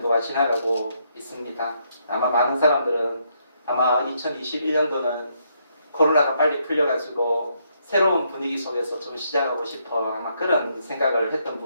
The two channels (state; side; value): inverted; both; correlation -0.74